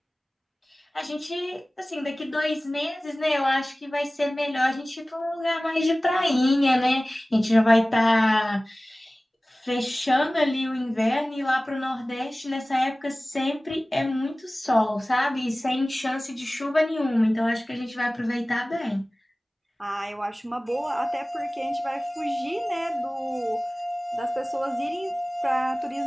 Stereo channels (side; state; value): both; normal; correlation 0.98